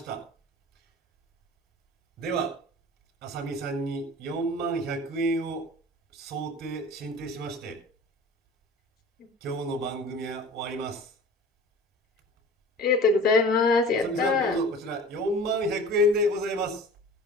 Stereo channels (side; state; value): both; normal; correlation 0.41